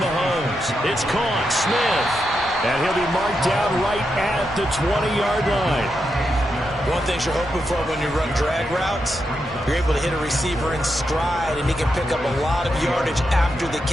It's caught. Smith. And he'll be marked down right at the 20-yard line. One thing you're hoping for when you run drag routes, you're able to hit a receiver in stride, and he can pick up a lot of yardage after the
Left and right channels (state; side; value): normal; both; correlation 0.85